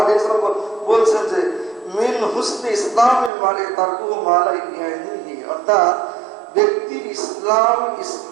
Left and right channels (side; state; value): left; drops out; at 3.3 s